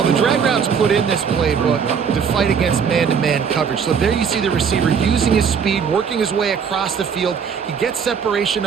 the drag route's put in this playbook to fight against man-to-man coverage. So there you see the receiver using his speed, working his way across the field. He gets separation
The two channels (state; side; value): quieter; left; 6.7 dB